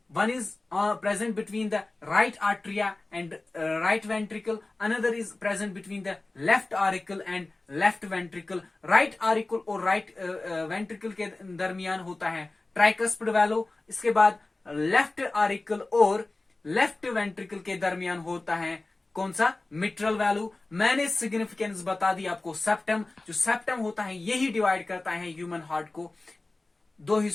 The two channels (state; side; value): quieter; right; 3.1 dB